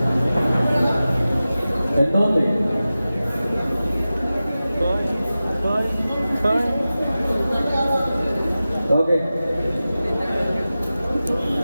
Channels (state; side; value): inverted; both; correlation -0.95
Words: ఎంత ఉంది? ఓకే